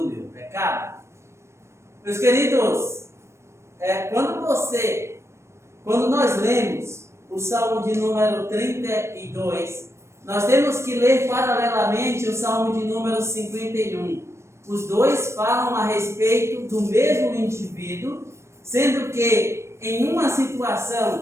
meu pecado. Meus queridos, quando nós lemos o Salmo de número 32, nós temos que ler paralelamente o Salmo de número 51. Os dois falam a respeito do mesmo indivíduo, sendo que em uma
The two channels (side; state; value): left; late; 0.13 ms